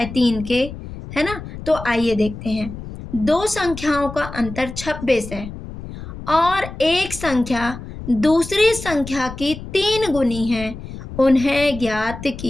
3 के, है ना। तो आइए देखते हैं। दो संख्याओं का अंतर 26 है और एक संख्या दूसरी संख्या की 3 गुनी है, उन्हें ज्ञात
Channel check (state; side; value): noise; left; rumble, 11 dB below the sound